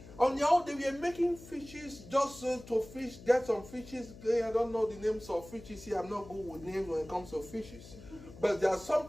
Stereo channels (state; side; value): noise; left; hum, 17 dB below the sound